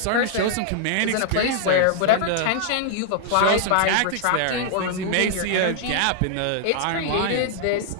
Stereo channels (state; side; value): different; both; correlation -0.01